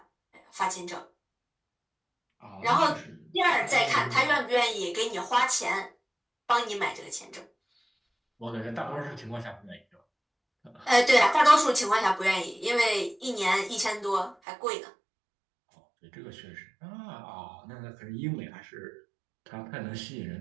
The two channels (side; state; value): left; drops out; at 14.4 s